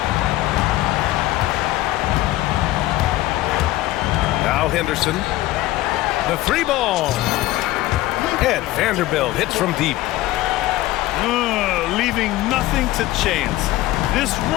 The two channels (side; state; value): right; quieter; 16.6 dB